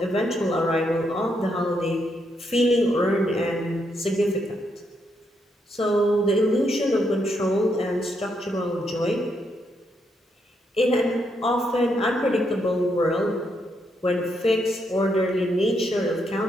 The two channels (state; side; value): normal; both; correlation 0.78